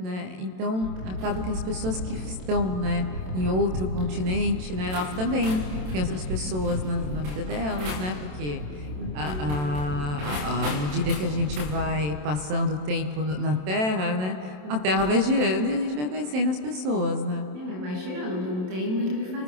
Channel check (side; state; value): left; late; 27 ms